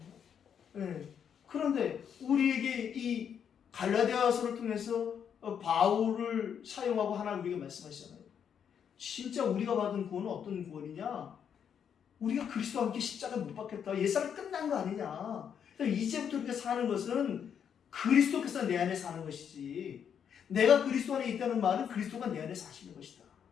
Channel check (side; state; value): right; quieter; 8.0 dB